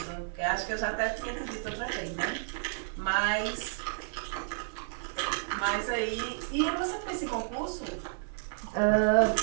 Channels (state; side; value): silent; left; digital silence